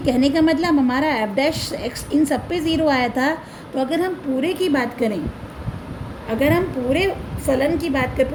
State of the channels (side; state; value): both; identical; correlation 1.00